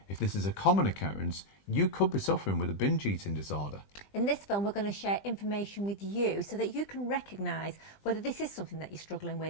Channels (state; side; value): late; right; 20 ms